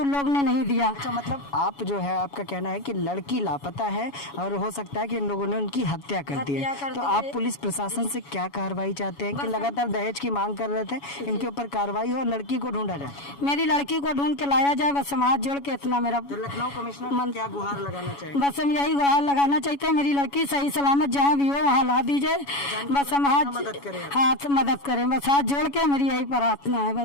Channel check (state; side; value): late; right; 7.1 ms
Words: लोग ने नहीं दिया। अच्छा, मतलब आप जो है आपका कहना है कि लड़की लापता है और हो सकता है कि इन लोगों ने उनकी हत्या कर दी है। तो आप पुलिस प्रशासन से क्या कार्रवाई चाहते हैं कि लगातार दहेज की मांग कर रहे थे, इनके ऊपर कार्रवाई हो, लड़की को ढूंढा जाए? मेरी लड़की को ढूंढ के लाया जाए, बस समाज जोड़ के इतना मेरा। तो लखनऊ कमिश्नर क्या गुहार लगाना चाहिए? बस हम यही गुहार लगाना चाहते हैं, मेरी लड़की सही सलामत जहाँ भी हो वहाँ ला दीजिए, बस हम हाथ मदद करें, बस हाथ जोड़ के मेरी यही प्रार्थना है